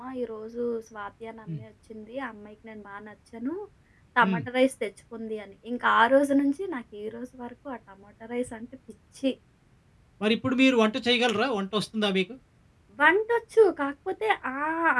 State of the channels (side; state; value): both; identical; correlation 1.00